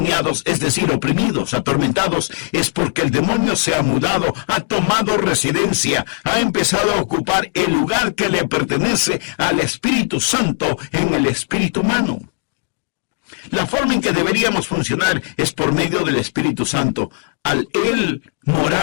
es decir, oprimidos, atormentados, es porque el demonio se ha mudado, ha tomado residencia, ha empezado a ocupar el lugar que le pertenece al Espíritu Santo en el espíritu humano. La forma en que deberíamos funcionar es por medio del Espíritu Santo, al Él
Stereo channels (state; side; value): silent; right; digital silence